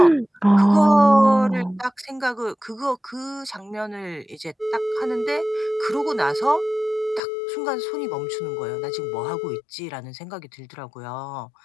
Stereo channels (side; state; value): right; drops out; at 7.2 s